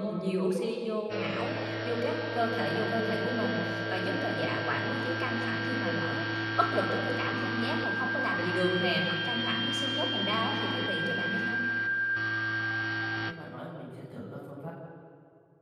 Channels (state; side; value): identical; both; correlation 1.00